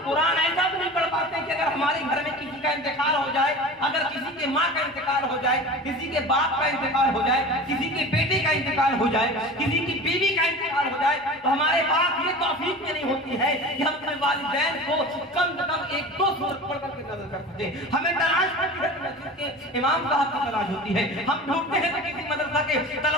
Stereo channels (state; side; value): normal; both; correlation 0.35